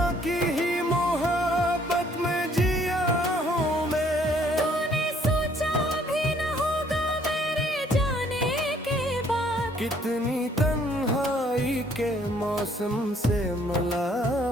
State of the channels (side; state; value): both; normal; correlation 0.63